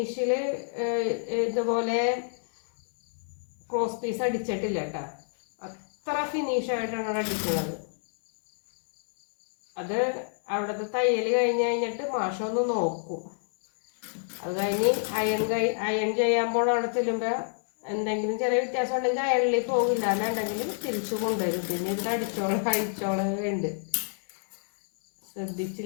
ഇതുപോലെ ക്രോസ് പീസ് അടിച്ചിട്ടില്ല കേട്ടോ. അത്ര ഫിനിഷായിട്ടാണ് അടിക്കുന്നത്. അത് അവിടുത്തെ തയ്യൽ കഴിഞ്ഞിട്ട് മാഷൊന്ന് നോക്കും. അത് കഴിഞ്ഞ് അയൺ ചെയ്യുമ്പോൾ അവിടെ ചെല്ലുമ്പോൾ എന്തെങ്കിലും ചെറിയ വ്യത്യാസം ഉണ്ടെങ്കിൽ അയണിൽ പോകില്ല. അല്ലാണ്ടെങ്കിൽ തിരിച്ചു കൊണ്ടുവരും. പിന്നെ ഇവിടെ അഴിച്ചോളം ഉണ്ട്.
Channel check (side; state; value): right; silent; digital silence